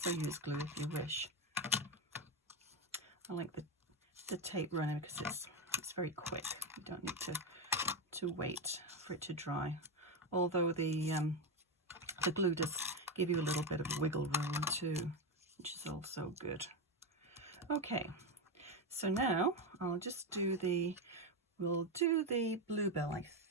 use glue if you wish. I like the tape runner because it's very quick. You don't need to wait for it to dry. Although the glue does give you a little bit of wiggle room too, which is also good. Okay, so now I'll just we'll do the bluebell, I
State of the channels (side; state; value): both; normal; correlation 0.12